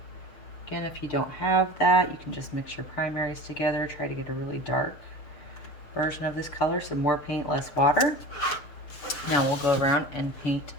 Again, if you don't have that, you can just mix your primaries together. Try to get a really dark version of this color, so more paint, less water. Now we'll go around and paint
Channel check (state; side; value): late; right; 7.1 ms